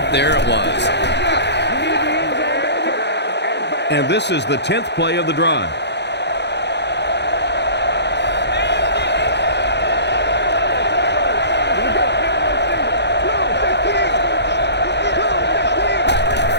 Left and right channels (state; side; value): late; right; 0.50 ms